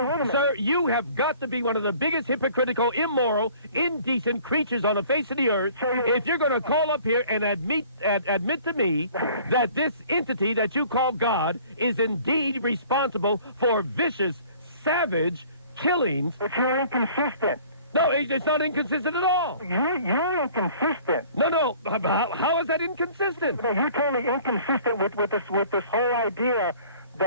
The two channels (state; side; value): inverted; both; correlation -0.51